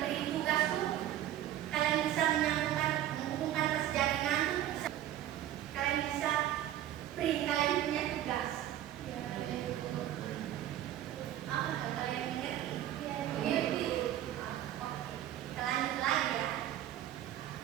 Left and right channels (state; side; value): quieter; left; 12.3 dB